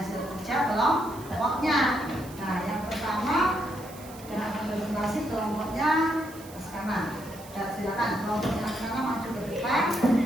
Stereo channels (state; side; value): noise; right; hiss, 19 dB below the sound